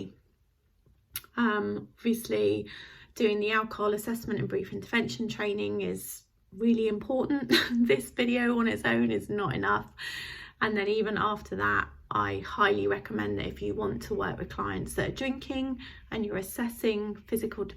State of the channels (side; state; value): both; identical; correlation 1.00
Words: Obviously doing the alcohol assessment and brief intervention training is really important. This video on its own is not enough, and then even after that I highly recommend that if you want to work with clients that are drinking and you're assessing physical